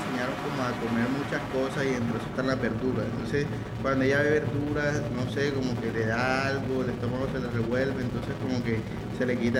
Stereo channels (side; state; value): both; identical; correlation 1.00